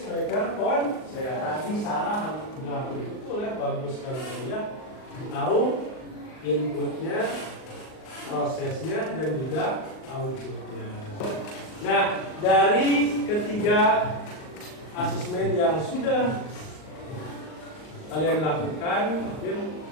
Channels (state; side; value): late; right; 39 ms